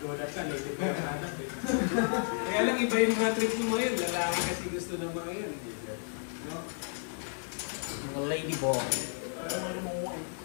ka, lady pa yung hanap eh. Kaya lang iba yung mga trip mo ngayon, lalaki kasi gusto ng mga yan. No? Mga lady boy.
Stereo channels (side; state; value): right; silent; digital silence